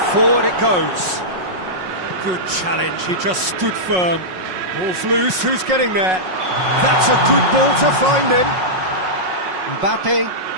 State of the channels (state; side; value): late; left; 5.5 ms